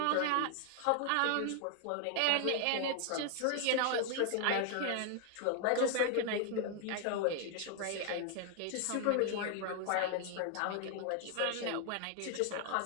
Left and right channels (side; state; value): both; different; correlation 0.00